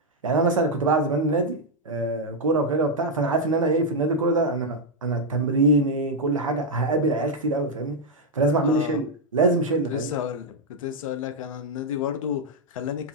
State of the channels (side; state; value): both; normal; correlation -0.01